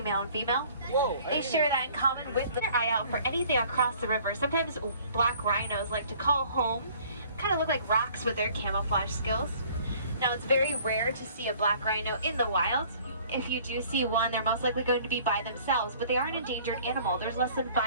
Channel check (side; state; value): both; inverted; correlation -0.54